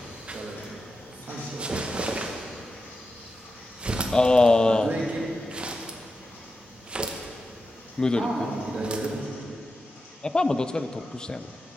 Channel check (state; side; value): normal; both; correlation 0.90